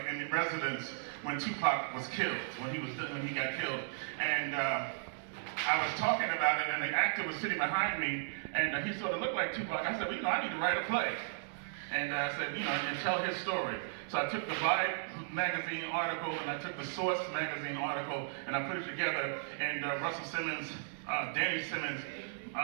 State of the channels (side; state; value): left; silent; digital silence